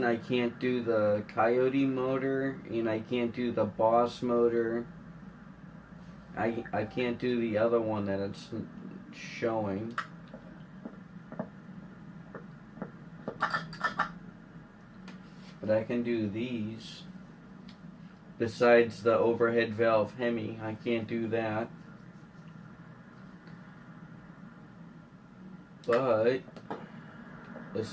I can't do the Coyote motor and I can't do the Boss motor. I can't do the other one that it's showing. But I can do these. Besides the overhead valve Hemi, I can't do that. But this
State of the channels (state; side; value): identical; both; correlation 1.00